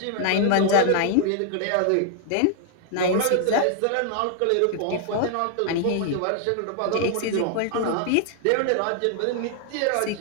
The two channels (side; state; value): both; different; correlation 0.00